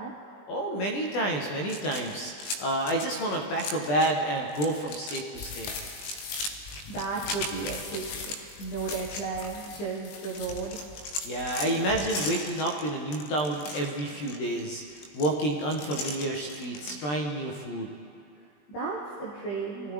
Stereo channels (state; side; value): late; right; 20 ms